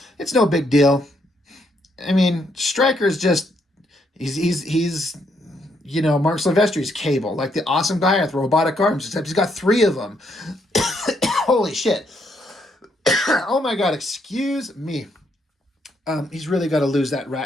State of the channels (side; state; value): both; normal; correlation 0.74